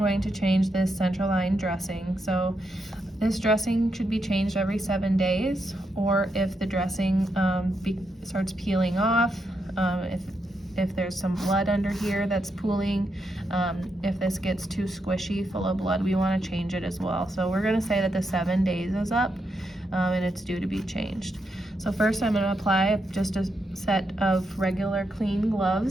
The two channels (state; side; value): normal; both; correlation 0.82